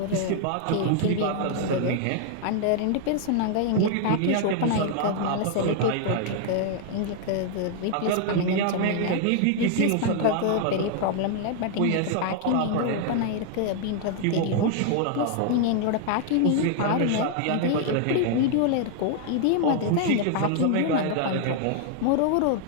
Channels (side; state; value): both; different; correlation 0.00